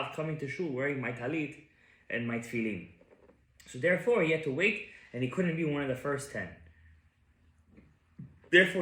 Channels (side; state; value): both; identical; correlation 1.00